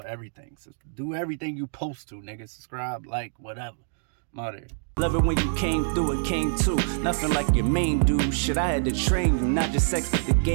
everything. So do everything you post to, nigga. Subscribe, like, whatever. I'm out here. Love it when you came through and came too. Nothing like your main dude. Shit, I had to train you, not just sex, but the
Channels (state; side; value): silent; left; digital silence